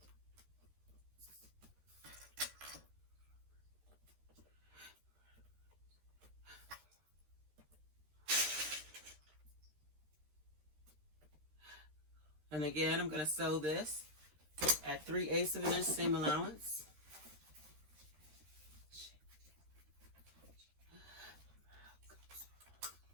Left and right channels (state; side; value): late; left; 13 ms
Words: And again, I'm going to sew this at 3/8 of an inch seam allowance.